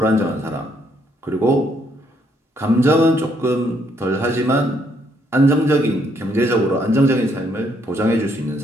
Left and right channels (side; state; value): both; normal; correlation 0.71